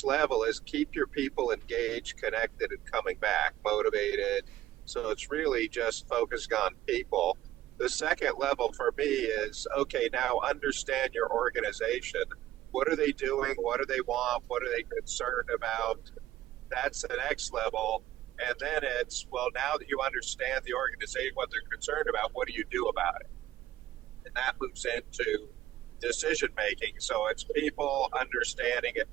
level is keep your people engaged, connected, and coming back, motivated. So it's really just focusing on people. The second level for me is, okay, now understand your organization. What are they doing? What do they want? What are they concerned about? That's the next level. And then it's, well, now that you understand the organization, what they're concerned about, what do you do about it? And that moves into decision making. So it's people understanding and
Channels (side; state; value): left; quieter; 14.3 dB